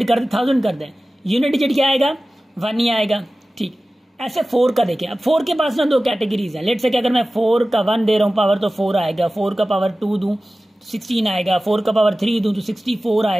कर दें, 1000 कर दें, यूनिट डिजिट क्या आएगा? 1 ही आएगा। ठीक, ऐसे 4 का देखें। अब 4 के पास ना 2 कैटेगरीज हैं। लेट से कि अगर मैं 4 का 1 दे रहा हूँ पावर, तो 4 आएगा। 4 का पावर 2 दूं तो 16 आएगा। 4 का पावर 3 दूं तो 64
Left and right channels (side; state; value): both; normal; correlation 0.96